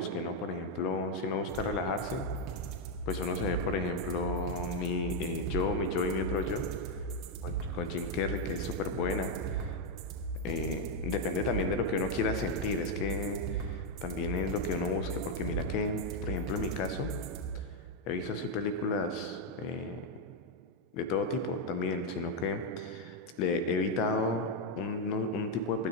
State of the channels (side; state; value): both; normal; correlation 0.01